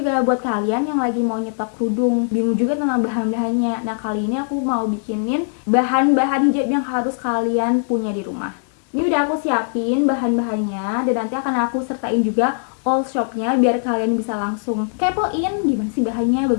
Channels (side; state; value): right; silent; digital silence